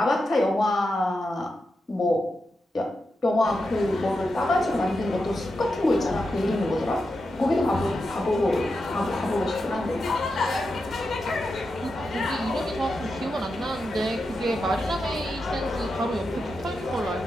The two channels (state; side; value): normal; both; correlation 0.88